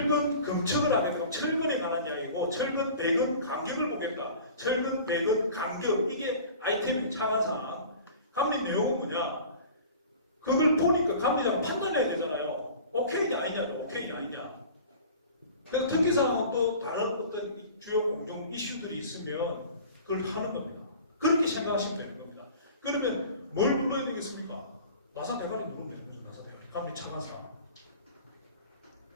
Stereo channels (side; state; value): both; inverted; correlation -0.42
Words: 검측을 하게 되고 철근에 관한 이야기고 철근 배근 간격을 보겠다. 철근 배근 간격 이게 아이템이 차관사항. 감리 내용은 뭐냐? 그걸 보니까 감리자가 판단해야 되잖아요. 오케이냐 아니냐, 오케이냐 아니냐. 그래서 특기사항은 또 다른 어떤 주요 공정 이슈들이 있으면 그걸 하는 겁니다. 그렇게 생각하시면 되는 겁니다. 그러면 뭘 눌러야 되겠습니까? 나사 대가리 누르면 되는 거죠. 나사 대가리. 감리 차관사항.